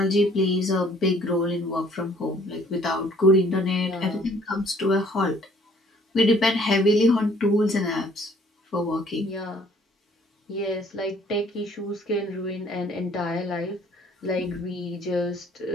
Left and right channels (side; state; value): both; normal; correlation 0.59